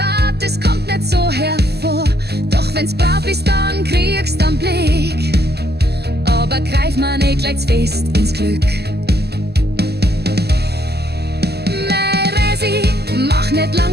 es kommt nicht so hervor. Doch wenn's brav ist, dann kriegst du einen Blick. Aber greif mal nicht gleich fest ins Glück. Mach nicht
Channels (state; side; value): late; left; 0.47 ms